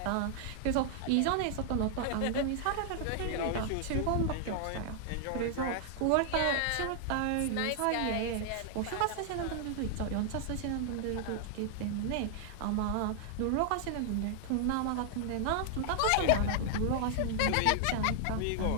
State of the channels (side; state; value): both; different; correlation 0.00